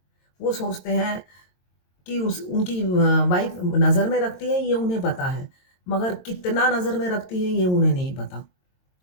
वो सोचते हैं कि उस उनकी वाइफ़ नज़र में रखती है ये उन्हें पता है, मगर कितना नज़र में रखती है ये उन्हें नहीं पता।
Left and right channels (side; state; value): right; late; 22 ms